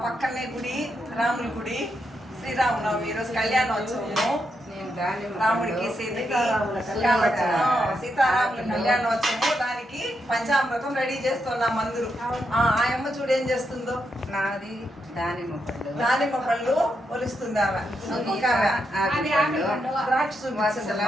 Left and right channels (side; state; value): both; normal; correlation 0.82